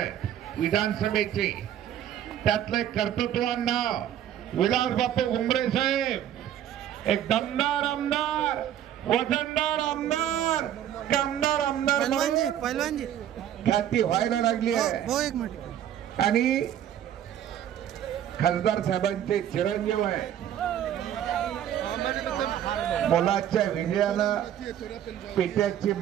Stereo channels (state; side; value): quieter; left; 10.8 dB